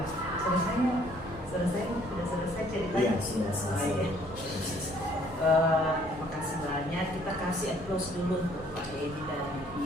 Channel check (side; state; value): both; normal; correlation 0.61